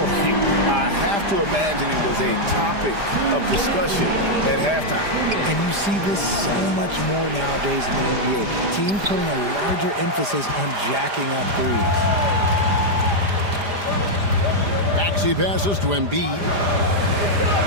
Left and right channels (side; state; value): left; late; 5.0 ms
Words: I have to imagine it was a topic of discussion at halftime. And you see this so much more nowadays in the NBA. Teams putting a larger emphasis on jacking up threes. Maxey passes to Embiid.